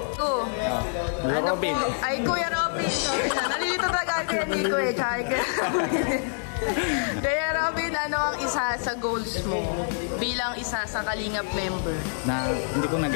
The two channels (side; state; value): right; silent; digital silence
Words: Robin. Ay, Kuya Robin. Nalilito talaga kaya Nico Kaya Robin, ano ang isa sa goals mo bilang isa sa Kalingap member? Hindi ko